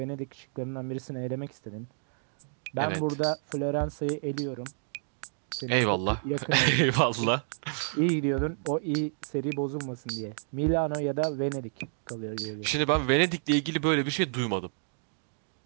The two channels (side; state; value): left; silent; digital silence